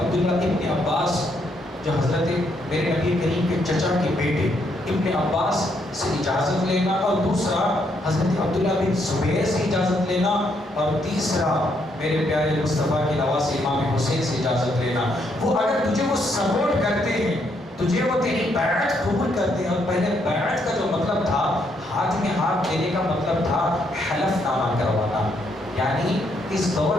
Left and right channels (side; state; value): both; normal; correlation 0.74